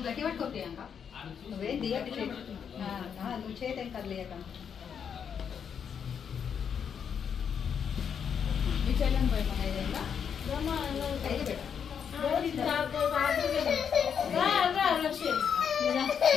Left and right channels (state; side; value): quieter; right; 7.4 dB